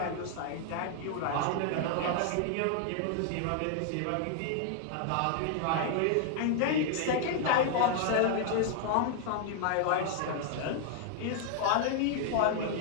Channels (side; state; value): both; different; correlation 0.00